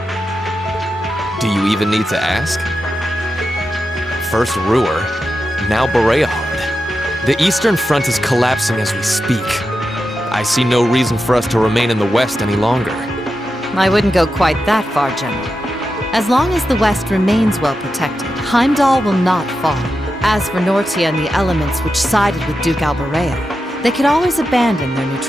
Do you even need to ask? First Ruhr, now Bereahard. The Eastern Front is collapsing as we speak. I see no reason for us to remain in the West any longer. I wouldn't go quite that far, General. As long as the West remains well protected, Heimdall will not fall. As for Nortia and the elements which sided with Duke Alberea, they could always abandon their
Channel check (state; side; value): normal; both; correlation 0.89